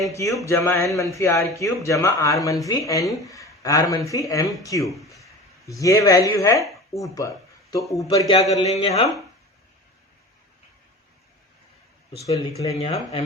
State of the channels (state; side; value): normal; both; correlation 0.35